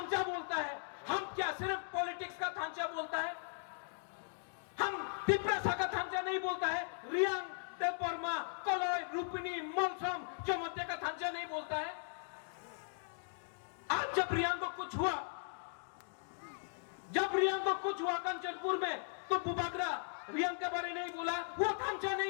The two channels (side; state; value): right; silent; digital silence